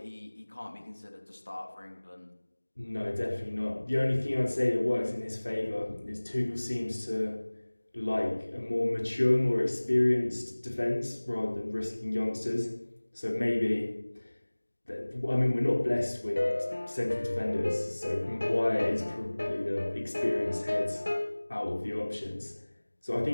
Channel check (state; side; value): inverted; both; correlation -1.00